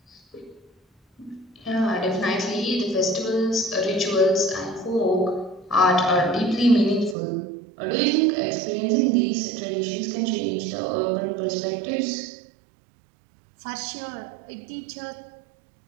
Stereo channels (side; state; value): left; drops out; at 7.2 s